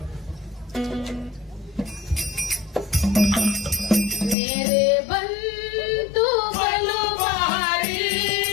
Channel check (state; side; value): drops out; right; at 4.4 s